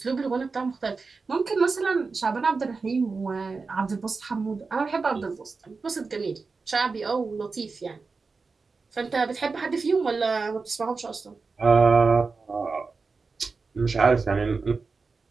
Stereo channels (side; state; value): left; quieter; 4.4 dB